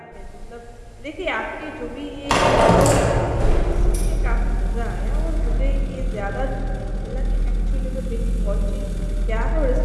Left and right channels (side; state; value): both; identical; correlation 1.00